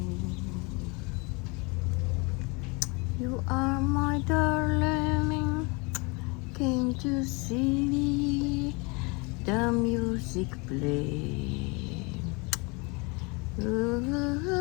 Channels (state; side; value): quieter; right; 29.2 dB